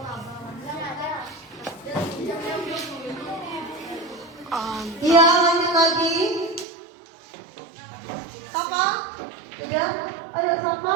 Iya, lanjut lagi. Sapa? Udah? Ayo sapa,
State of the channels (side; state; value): left; drops out; at 6.7 s